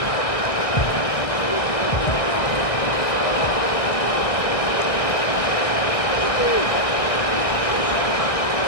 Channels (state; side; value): late; right; 1.6 ms